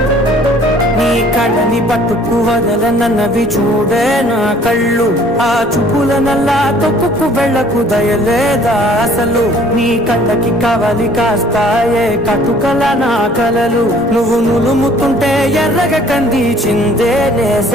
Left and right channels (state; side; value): normal; both; correlation 0.56